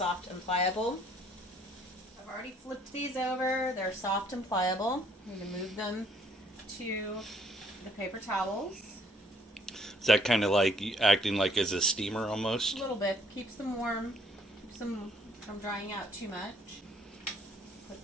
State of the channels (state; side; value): normal; both; correlation 0.64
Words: and pliable. I've already flipped these over. They're soft and pliable. I'm going to move them to the paper towels. Is that kind of like acting like as a steamer A almost? little bit. Keeps them warm. Keeps them from drying out too much. Put